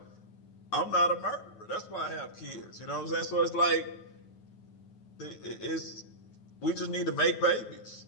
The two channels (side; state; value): right; late; 9.4 ms